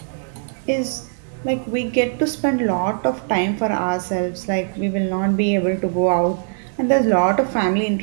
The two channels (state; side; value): silent; left; digital silence